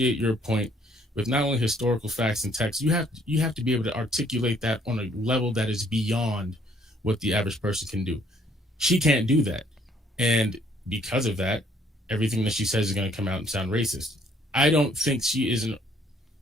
your point with not only historical facts and text. You have to be able to articulate that on a level that is beyond what the average person can do. She can't do that, and because of that, everything that she says is going to come out and sound racist. I don't think she isn't.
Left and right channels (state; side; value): normal; both; correlation 0.64